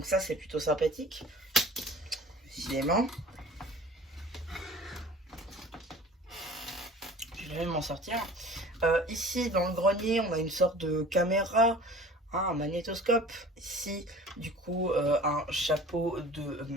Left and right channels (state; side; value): normal; both; correlation 0.44